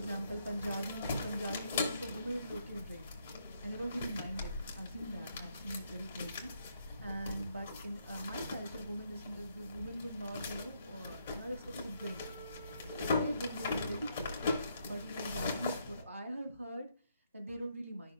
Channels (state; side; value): inverted; both; correlation -0.75